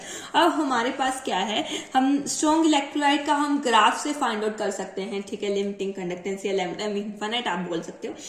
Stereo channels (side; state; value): both; identical; correlation 1.00